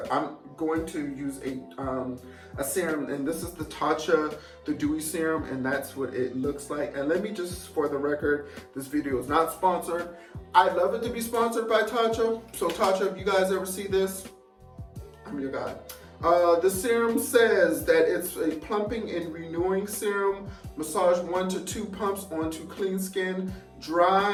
I'm going to use a serum, and this is the Tatcha, the Dewy serum, and that's what it looks like. And let me just, for the record, this video is not sponsored. I'd love it to be sponsored by Tatcha. So Tatcha, if you guys ever see this, I'm your guy. The serum says that it's a plumping and renewing serum. Massage 1 to 2 pumps onto clean skin,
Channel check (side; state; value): both; identical; correlation 1.00